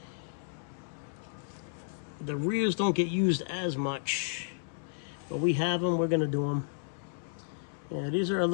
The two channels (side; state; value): right; silent; 56 dB below the other